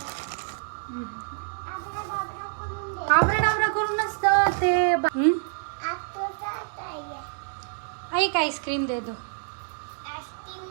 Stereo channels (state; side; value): silent; left; 60 dB below the other